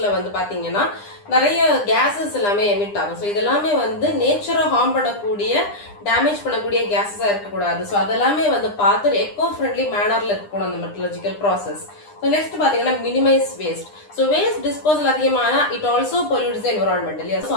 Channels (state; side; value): late; right; 9.9 ms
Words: வந்து பாத்தீங்கன்னா நிறைய கேசஸ் எல்லாமே எமிட் ஆகும். ஸோ இதெல்லாமே வந்து நேச்சரை ஹார்ம் பண்ணக்கூடிய டேமேஜ் பண்ணக்கூடிய கேசஸா இருக்கக்கூடாது. ஸோ அதெல்லாமே வந்து பார்த்து எக்கோ ஃப்ரெண்ட்லி மேனர்ல இருக்கணும் அந்த மெட்டலர்ஜிக்கல் ப்ராசஸ். ஸோ நெக்ஸ்ட் பாத்தீங்கன்னா minimise waste. So waste disposal அதிகமான it also pollutes the environment இல்லையா. ஸோ